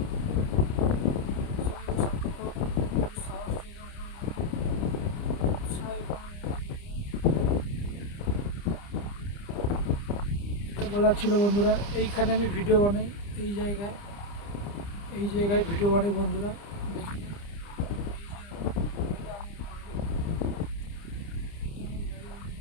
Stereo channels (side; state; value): right; late; 30 ms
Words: বলার ছিল বন্ধুরা, এইখানে আমি ভিডিও বানাই, এই জায়গায় ভিডিও বানাই বন্ধুরা। দেখি